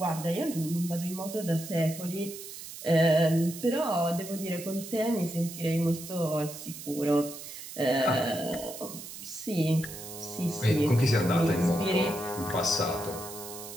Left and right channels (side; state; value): right; noise; hiss, 12 dB below the sound